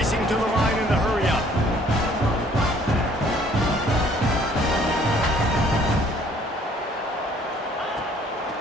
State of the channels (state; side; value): normal; both; correlation 0.59